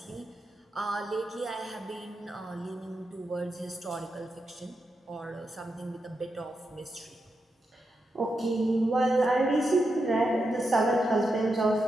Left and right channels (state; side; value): normal; both; correlation 0.86